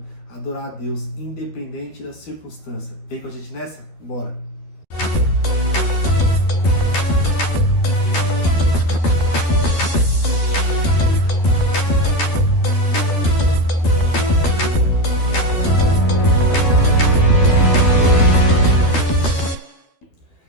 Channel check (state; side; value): late; right; 12 ms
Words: adorar a Deus independente da circunstância. Vem com a gente nessa? Bora!